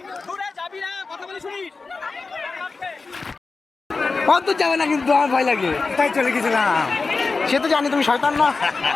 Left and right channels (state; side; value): quieter; right; 4.1 dB